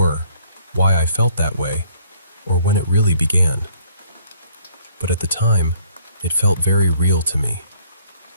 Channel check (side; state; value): both; inverted; correlation -0.61